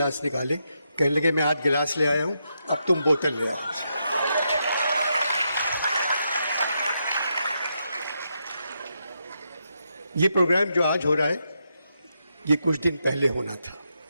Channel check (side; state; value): both; inverted; correlation -0.82